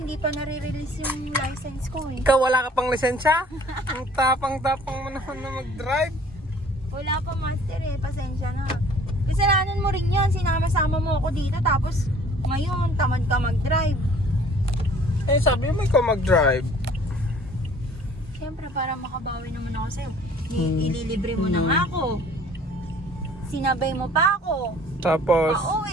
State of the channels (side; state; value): both; normal; correlation 0.53